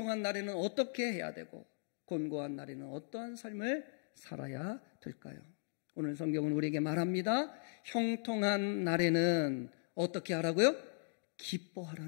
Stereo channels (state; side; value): silent; right; digital silence